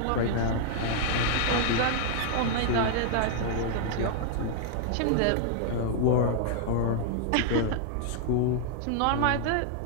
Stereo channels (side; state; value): both; different; correlation -0.01